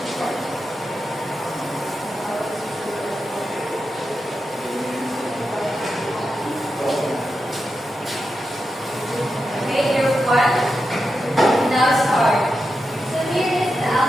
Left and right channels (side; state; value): both; normal; correlation 0.88